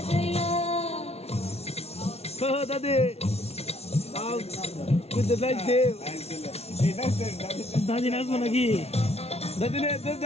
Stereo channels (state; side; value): late; right; 0.30 ms